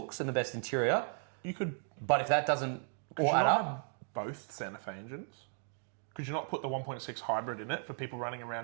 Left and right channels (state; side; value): silent; left; 54 dB below the other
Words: and the best interior, you could but if that doesn't could all you add not up, have both Santa Fe engines? Could you not put the 1.6 hybrid in it for people running